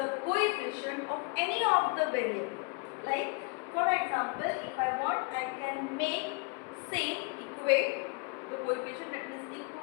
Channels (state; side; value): quieter; right; 31.2 dB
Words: coefficient of any of the variables. Like for example, if I want, I can make same equate the coefficient, that means